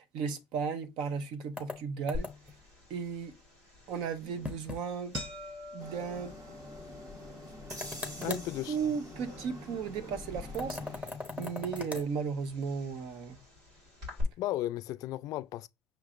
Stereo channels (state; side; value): normal; both; correlation 0.42